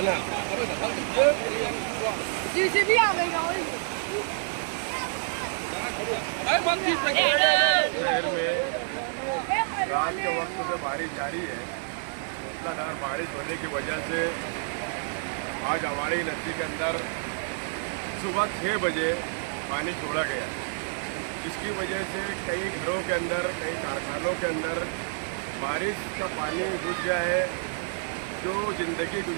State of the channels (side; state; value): left; silent; digital silence